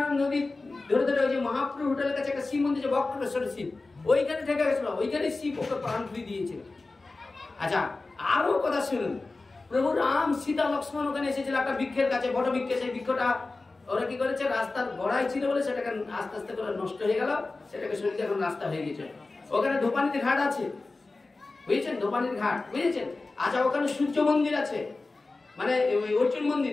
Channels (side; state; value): right; quieter; 3.5 dB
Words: নদী ধরে ধরে ওই যে মহাপ্রভু হোটেলের কাছে একটা শিব মন্দির, যে বক্রেশ্বরের শিব, ওইখানে থেকে গেছিল, ওইখানে শিব ওকে প্রাণ ফিরিয়ে দিয়েছিল। আচ্ছা, আরো কথা শুনুন, প্রভু রাম সীতা লক্ষ্মণ ওখানে এসেছিল একটা বৃক্ষের কাছে, বট বৃক্ষে। সেই বৃক্ষটা ওরা কি করেছে? রাস্তার গোড়ায় ছিল বলে সেটাকে আস্তে আস্তে করে নষ্ট হয়ে গেল, সেটাকে সরিয়ে এখন রাস্তা হয়ে গেছে। ওখানে ধোপানিতে ঘাট আছে, বুঝেছেন? ধোপানির ঘাট, বুঝেছেন? আচ্ছা, ওখানে সূর্য মন্দির আছে, মানে অর্জুন